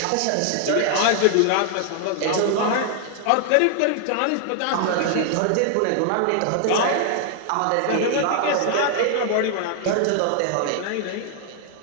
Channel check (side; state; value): both; different; correlation 0.00